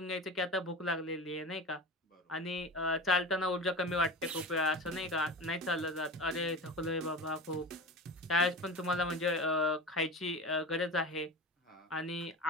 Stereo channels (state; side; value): normal; both; correlation 0.31